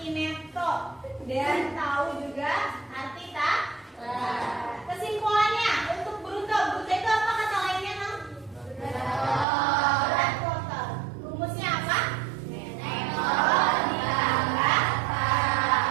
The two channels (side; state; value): left; drops out; at 9.5 s